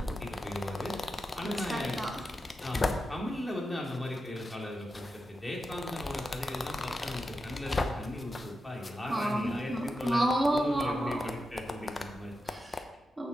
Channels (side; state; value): both; normal; correlation 0.89